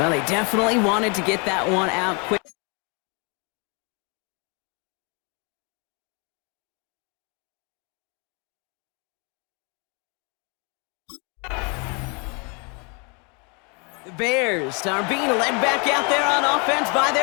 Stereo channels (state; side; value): quieter; right; 33.2 dB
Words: they definitely wanted to get that one out quick. The Bears are being led back out there on offense by